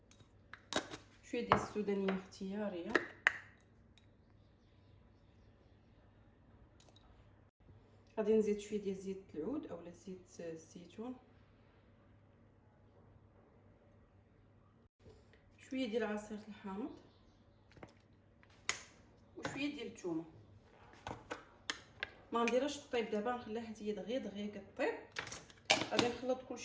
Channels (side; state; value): both; identical; correlation 1.00